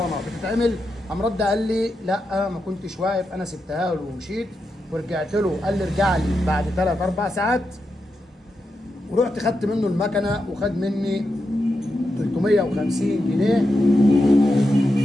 بتتعمل. قام رد قال لي لا ما كنتش واقف، انا سبتها له ومشيت ورجعت له. قال لي ارجع لي بعد 3 4 ساعات، ورحت خدت منه المكنه وخد مني 350 جنيه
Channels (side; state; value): both; normal; correlation 0.87